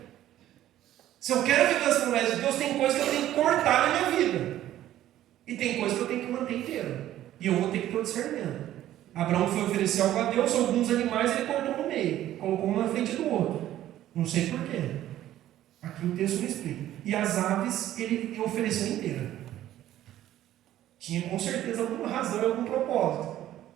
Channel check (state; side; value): quieter; left; 13.0 dB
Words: Se eu quero viver as promessas de Deus, tem coisas que eu tenho que cortar na minha vida. E tem coisas que eu tenho que manter inteira. E eu vou ter que ter o discernimento. Abraão foi oferecer algo a Deus, alguns animais ele cortou no meio, colocou um na frente do outro. Não sei porquê. Aqui o texto não explica. E as aves ele ofereceu inteira. Tinha com certeza alguma razão e algum propósito.